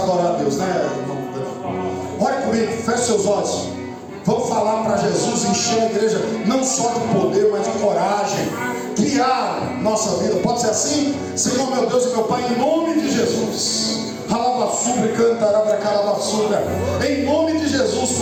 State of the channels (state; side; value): identical; both; correlation 1.00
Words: a Deus, né? Ore comigo, feche seus olhos. Vamos falar para Jesus encher a igreja não só de poder, mas de coragem. Criar nossa vida. Pode ser assim? Senhor meu Deus e meu Pai, em nome de Jesus. Em nome de Jesus,